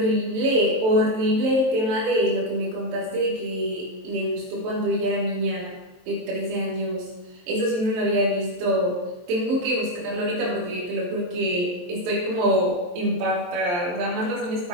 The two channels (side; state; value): left; late; 23 ms